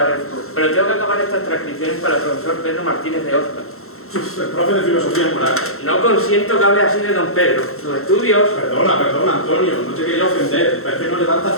pero tengo que acabar estas transcripciones para el profesor Pedro Martínez de Oscar. El profe de filosofía moral. No consiento que hable así de don Pedro. Sus estudios... Perdona, Antonio, no te quería ofender, pero es que no levantas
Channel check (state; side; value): late; right; 0.63 ms